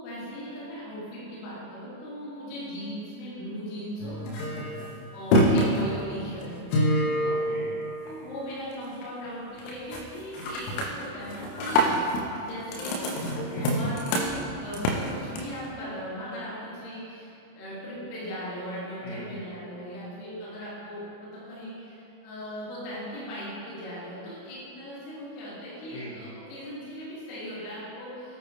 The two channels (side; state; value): right; late; 28 ms